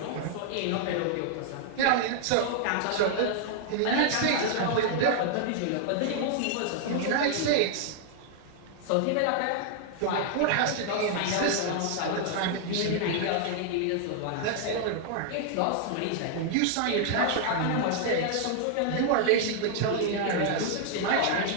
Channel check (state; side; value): different; both; correlation 0.00